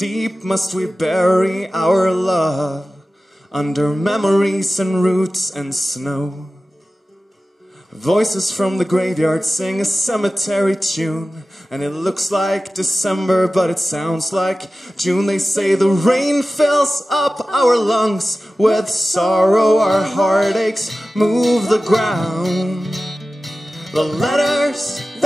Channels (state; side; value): normal; both; correlation 0.95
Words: must we bury our love under memories and roots and snow? Voices from the graveyard sing a cemetery tune, and it looks like December, but it sounds like June. They say the rain fills up our lungs with sorrow, our heartaches move the ground. The letters